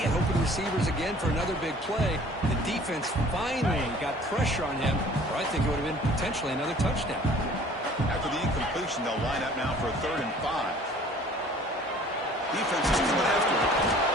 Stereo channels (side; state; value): both; normal; correlation 0.51